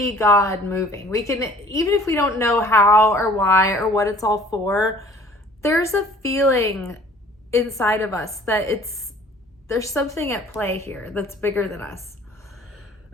God moving. We can, even if we don't know how or why or what it's all for, there's a feeling inside of us that there's something at play here that's bigger than us.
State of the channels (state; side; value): normal; both; correlation 0.51